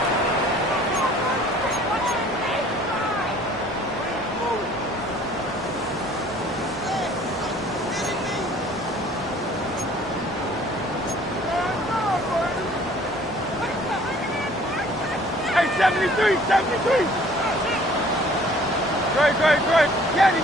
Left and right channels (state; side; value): normal; both; correlation 0.54